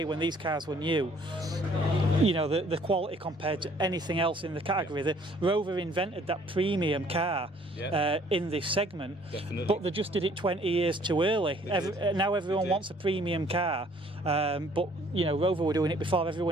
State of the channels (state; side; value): normal; both; correlation 0.59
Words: when these cars were new, the quality compared to anything else in the category, the Rover invented that premium car. In this segment, definitely. But they just did it 20 years too early. Now everyone wants a premium car, but Rover were doing it before